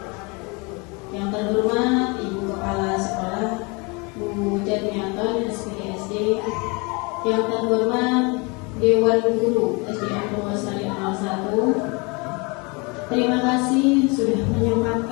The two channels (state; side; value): quieter; right; 29.2 dB